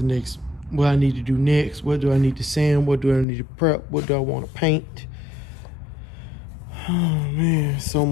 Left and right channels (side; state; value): right; drops out; at 3.2 s